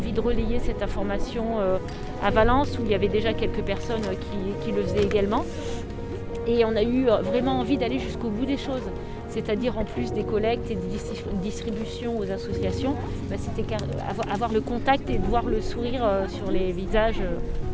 de relayer cette information à Valence où il y avait déjà quelques personnes qui le faisaient également, et on a eu vraiment envie d'aller jusqu'au bout des choses. C'est-à-dire en plus des collectes et des distributions aux associations, c'était avoir le contact et de voir le sourire sur les visages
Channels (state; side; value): identical; both; correlation 1.00